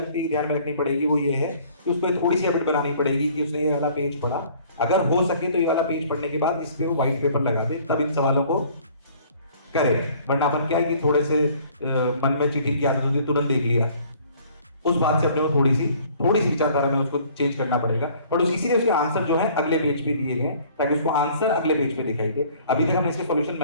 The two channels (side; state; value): both; inverted; correlation -0.55